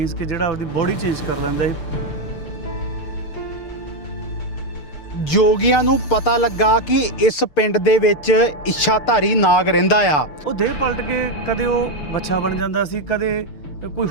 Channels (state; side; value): late; right; 6.7 ms